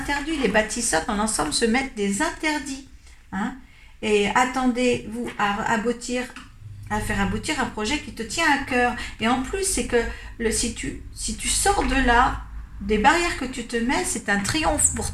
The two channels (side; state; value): both; identical; correlation 1.00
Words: Les bâtisseurs dans l'ensemble se mettent des interdits, hein. Et attendez-vous à aboutir à faire aboutir un projet qui te tient à cœur. Et en plus, c'est que si tu sors de là, des barrières que tu te mets, c'est un triomphe pour